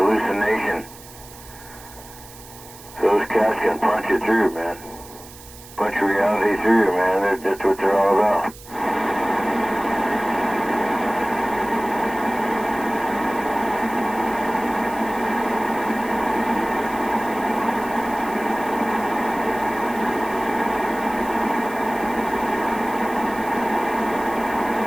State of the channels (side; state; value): right; noise; hiss, 19 dB below the sound